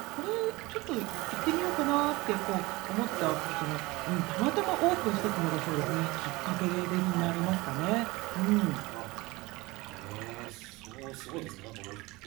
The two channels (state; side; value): quieter; left; 22.0 dB